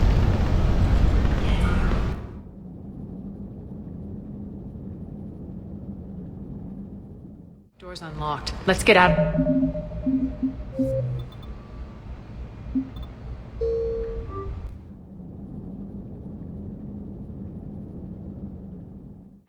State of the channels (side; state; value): both; identical; correlation 1.00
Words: Door's unlocked. Let's get out.